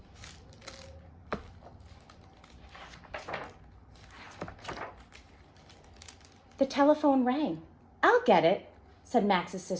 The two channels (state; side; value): identical; both; correlation 1.00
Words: The telephone rang. "I'll get it," said Max's